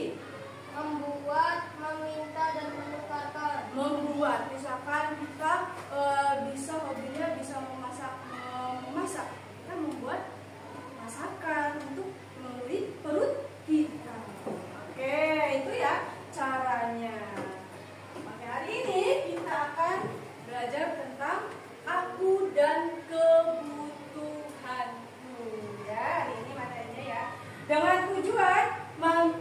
Membuat, meminta, dan menukarkan. Membuat, misalkan kita bisa hobinya bisa memasak, kita membuat masakan untuk memenuhi perut kita. Oke, itu ya caranya. Oke, hari ini kita akan belajar tentang aku dan kebutuhanku. Ya, hari ini materinya ya. Dengan tujuan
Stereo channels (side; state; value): both; identical; correlation 1.00